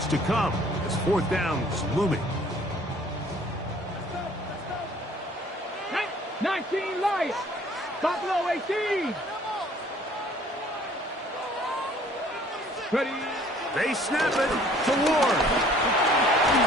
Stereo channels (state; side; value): normal; both; correlation 0.56